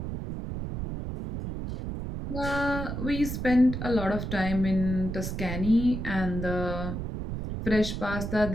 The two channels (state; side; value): noise; right; rumble, 5 dB below the sound